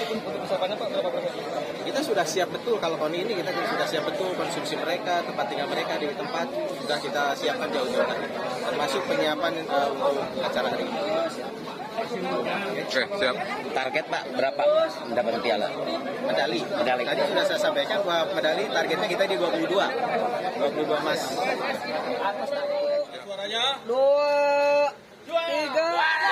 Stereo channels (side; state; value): both; identical; correlation 1.00